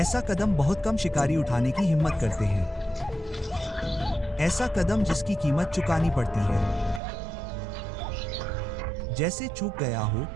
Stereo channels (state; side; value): drops out; left; at 7.0 s